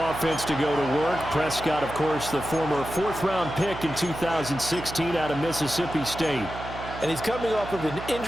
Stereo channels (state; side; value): noise; right; hum, 11 dB below the sound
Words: to go to work. Prescott, of course, the former 4th-round pick in 2016 out of Mississippi State. And he's coming off of an